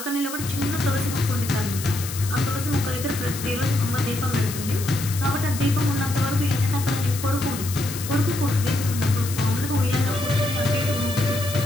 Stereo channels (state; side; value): noise; left; hiss, 9 dB below the sound